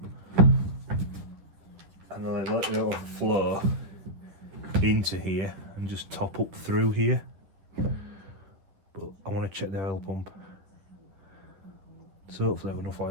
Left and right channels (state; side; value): late; left; 11 ms